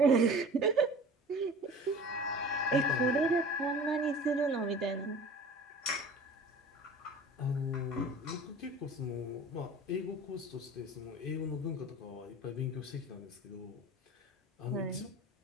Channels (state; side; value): normal; both; correlation 0.41